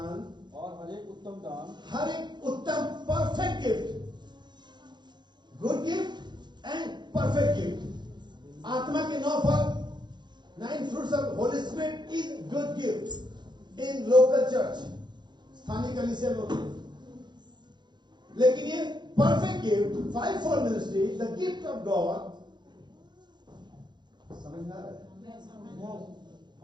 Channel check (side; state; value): left; late; 0.21 ms